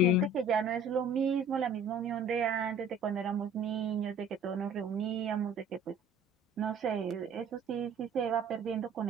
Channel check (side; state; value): both; normal; correlation 0.50